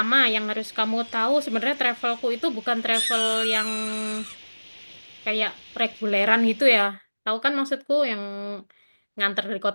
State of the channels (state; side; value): inverted; both; correlation -1.00